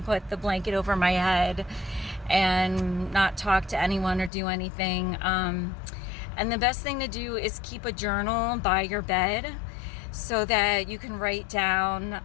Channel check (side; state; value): right; drops out; at 4.3 s